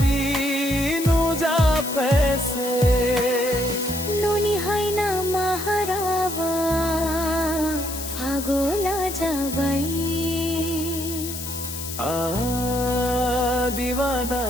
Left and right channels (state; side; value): noise; left; hiss, 8 dB below the sound